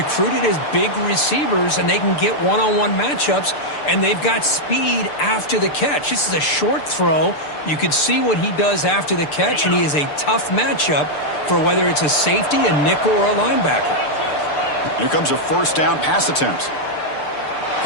as big receivers, and they can get one-on-one matchups, and they've got speed after the catch. This is a short throw. You can see what he does after the catch, and he is a tough matchup for whether it's a safety, a nickel, or a linebacker. Here comes a first down pass attempt.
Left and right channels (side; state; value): right; late; 6.8 ms